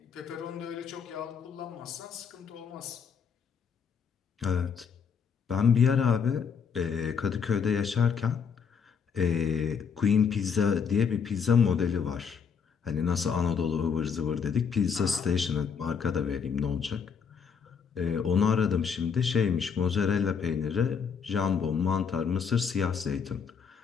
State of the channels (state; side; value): quieter; right; 6.5 dB